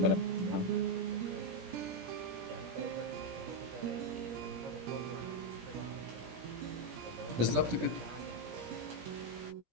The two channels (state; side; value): late; left; 17 ms